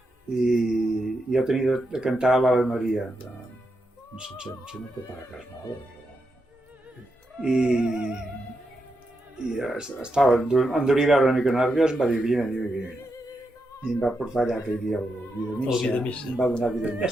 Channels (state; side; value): normal; both; correlation 0.85